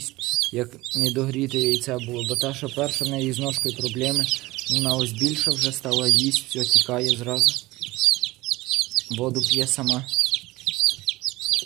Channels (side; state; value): left; quieter; 19.7 dB